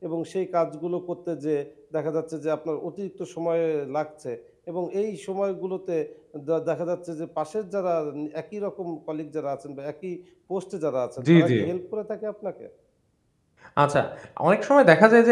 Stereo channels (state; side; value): identical; both; correlation 1.00